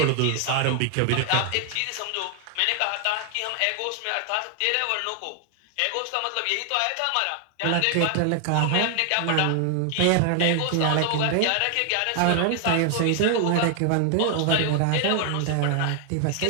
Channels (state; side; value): different; both; correlation 0.00